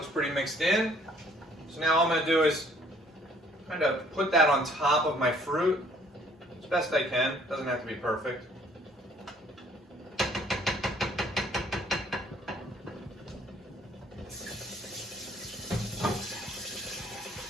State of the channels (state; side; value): normal; both; correlation 0.61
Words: pretty mixed in. So now all I'm going to do is kind of put that on top of my fruit as best I can. Doesn't have to be perfect.